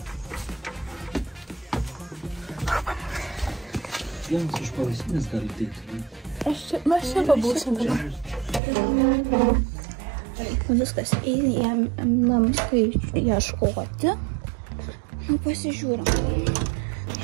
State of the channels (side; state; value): left; drops out; at 8.6 s